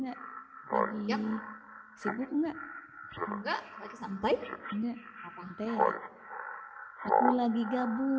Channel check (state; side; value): identical; both; correlation 1.00